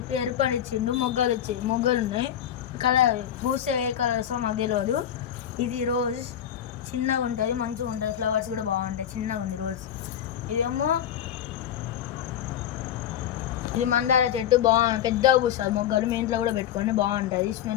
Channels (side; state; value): right; quieter; 10.2 dB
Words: ఎరుపని ఇచ్చిండు, మొగ్గలు ఉన్నాయి. కలర్ పూస్తే ఏ కలర్స్ మాకు తెలియదు. ఇది రోజ్, చిన్నగా ఉంటుంది, మంచిగా ఉంటుంది. ఫ్లవర్స్ కూడా బాగుంటాయి, చిన్నగా ఉంది రోజ్. ఇదేమో ఇది మందార చెట్టు, పెద్దగా పూస్తుంది మొగ్గలు. మీ ఇంట్లో కూడా పెట్టుకోండి, బాగుంటుంది.